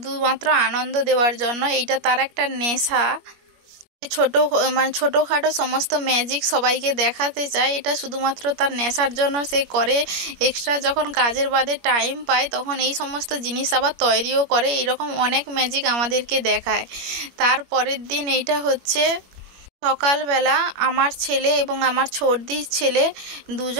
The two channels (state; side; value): late; left; 21 ms